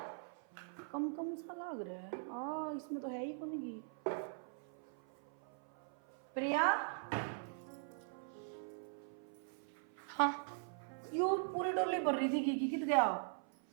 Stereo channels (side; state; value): left; silent; 50 dB below the other